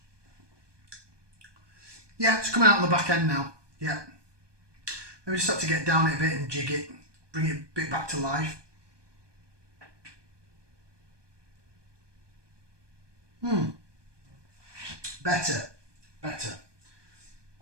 Yeah, it's coming out on the back end now. Yeah. Maybe just have to get down it a bit and jig it. Bring it a bit back to life. Better. It's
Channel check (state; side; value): late; left; 1.2 ms